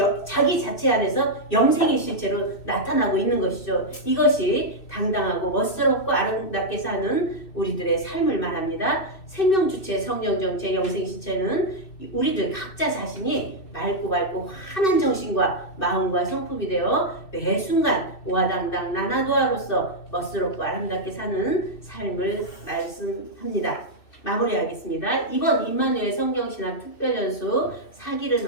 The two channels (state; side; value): late; right; 2.6 ms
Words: 자기 자체 안에서 영생의 실체로 나타나고 있는 것이죠. 이것이 당당하고 멋스럽고 아름답게 사는 우리들의 삶을 말합니다. 생명주체, 성령정체, 영생실체는 우리들 각자 자신이 맑고 환한 정신과 마음과 성품이 되어 매 순간 오화당당 나나도아로서 멋스럽고 아름답게 사는 삶을 말씀합니다. 마무리하겠습니다. 이번 임마누엘 성경신학 특별연수 4기를